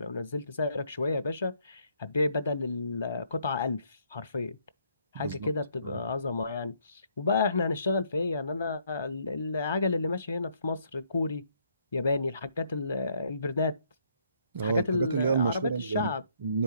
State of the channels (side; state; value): both; inverted; correlation -0.69